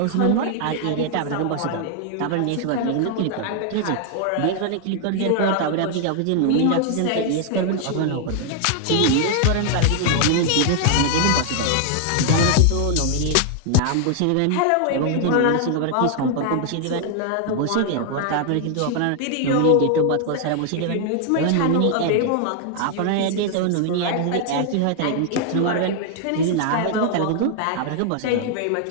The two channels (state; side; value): different; both; correlation 0.00